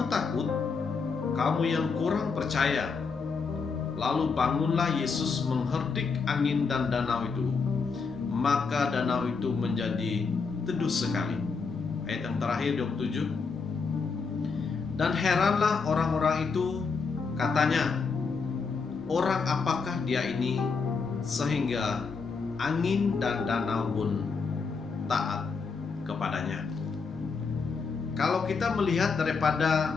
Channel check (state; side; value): quieter; right; 5.0 dB